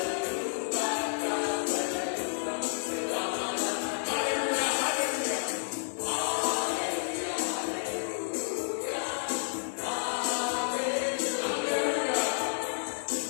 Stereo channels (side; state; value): right; silent; 57 dB below the other